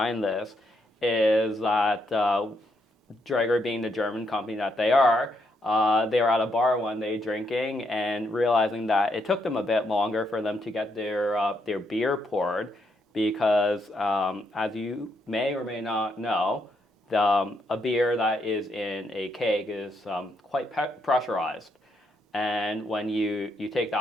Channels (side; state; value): both; normal; correlation 0.77